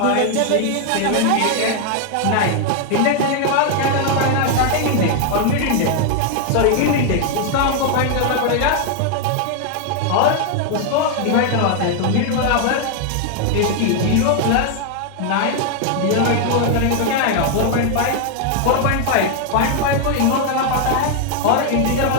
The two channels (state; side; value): different; both; correlation 0.00